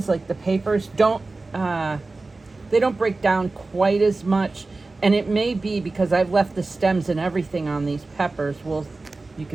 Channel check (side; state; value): left; quieter; 3.4 dB